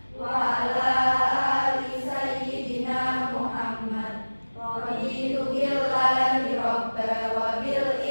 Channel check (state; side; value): inverted; both; correlation -1.00